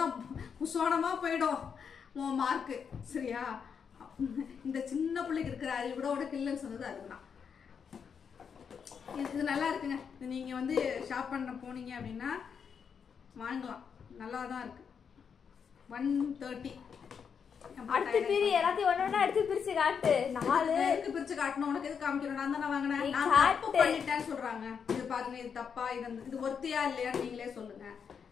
புஸ்வானமா போயிடும் உன் மார்க்கு. சரியா? இந்த சின்ன பிள்ளைக்கு இருக்கிற அறிவு கூட உனக்கு இல்லைன்னு சொன்னது அதுதான். இது நல்லா இருக்குங்க. நீங்க வந்து ஷாப் பண்ண போனீங்க அப்படின்னா வாங்கலாம், நல்லா தான் இருக்கு. 130. அடுத்து பிரி, எல்லாத்தையும் ஒண்ணா எடுத்து பிரிச்சு காட்டு. 4 எதுக்கு பிரிச்சு காட்டணும்? உனக்கு எது காமிக்கணும்? நான் தானே வாங்கினேன். நான் தப்பு பண்ணிட்டேன்னு சொல்றாங்க. இது பாருங்க, இது தப்பா, இது ஒருத்தியா இல்லையா நீங்களே சொல்லுங்க.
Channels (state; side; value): quieter; right; 6.7 dB